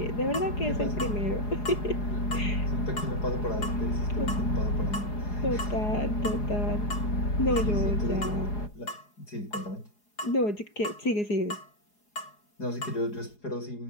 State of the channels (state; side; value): late; right; 4.8 ms